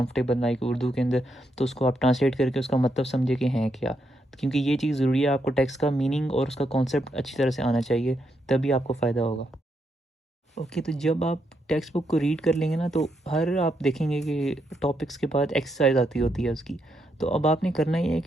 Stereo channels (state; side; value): normal; both; correlation 0.80